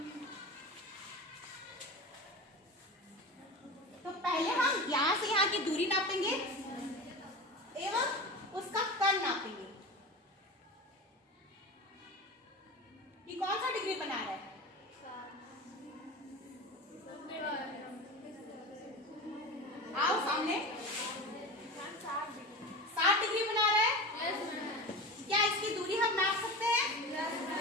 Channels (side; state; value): both; normal; correlation 0.28